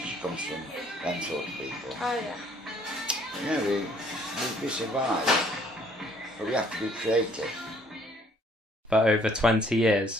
comes from them sort of people. Oh yeah. Yeah, we survive, but we have to be creative. For over 20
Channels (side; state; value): both; normal; correlation 0.61